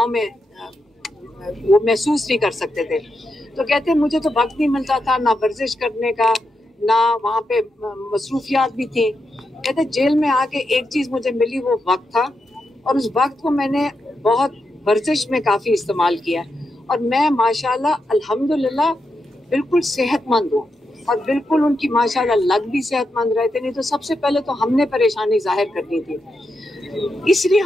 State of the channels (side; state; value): both; normal; correlation 0.85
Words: में वो महसूस नहीं कर सकते थे। तो कहते मुझे तो वक्त नहीं मिलता था, ना वर्जिश करने का, ना वहाँ पे मसरूफियात भी थी। कहते जेल में आके एक चीज़ मुझे मिली, वो वक्त था, और उस वक्त को मैंने बहुत वर्जिश में काफ़ी इस्तेमाल किया और मैं माशाल्लाह अल्हम्दुलिल्लाह बिल्कुल सेहतमंद हूँ। और बिल्कुल उनकी माशाल्लाह लग भी सेहतमंद रहते, नहीं तो सबसे पहले तो हमने परेशानी जाहिर करनी थी। इसलिए